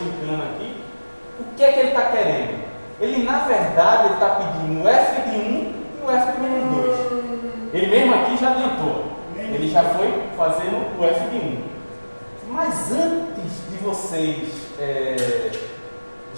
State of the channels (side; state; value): both; inverted; correlation -1.00